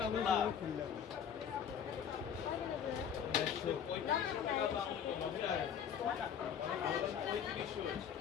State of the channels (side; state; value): right; quieter; 8.2 dB